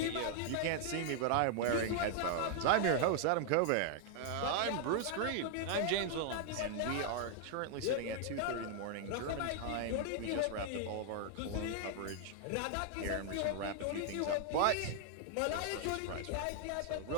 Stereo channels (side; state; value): both; different; correlation 0.00